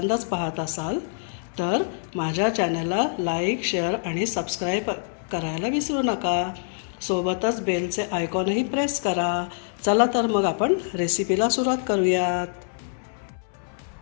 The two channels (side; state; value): right; silent; 62 dB below the other